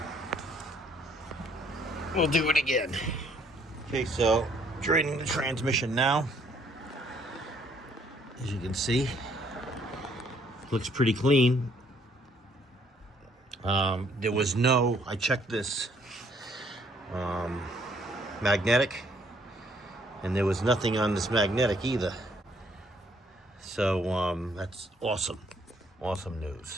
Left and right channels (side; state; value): both; normal; correlation 0.65